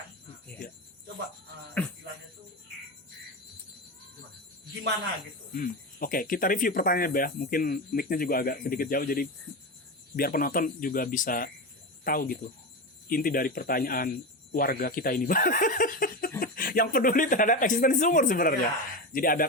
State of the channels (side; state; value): both; normal; correlation 0.19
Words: Coba istilahnya tuh gimana gitu. Oke, kita review pertanyaannya, Bah. Mungkin mic-nya juga agak sedikit jauh, jadi biar penonton juga bisa tahu gitu inti dari pertanyaan warga kita ini, Bah. Yang peduli terhadap eksistensi sumur sebenarnya. Jadi